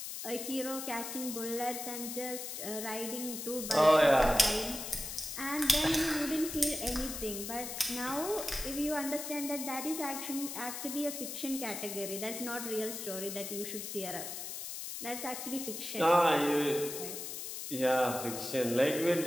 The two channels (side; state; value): left; noise; hiss, 7 dB below the sound